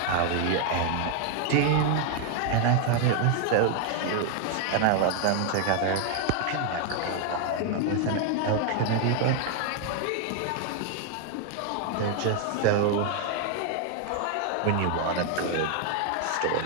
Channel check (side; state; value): both; different; correlation 0.01